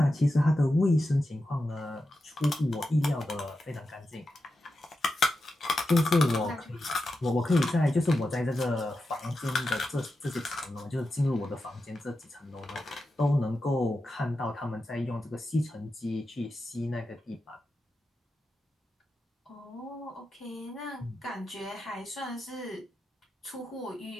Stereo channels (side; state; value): both; normal; correlation 0.90